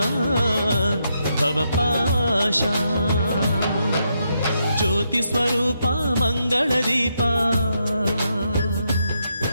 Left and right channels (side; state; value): both; inverted; correlation -0.80